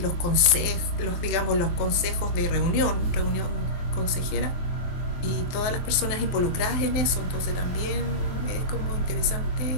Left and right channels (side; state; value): right; late; 23 ms